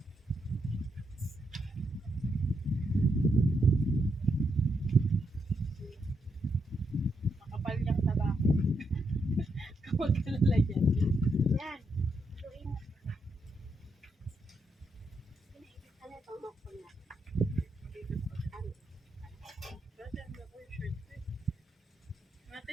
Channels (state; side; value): normal; both; correlation 0.80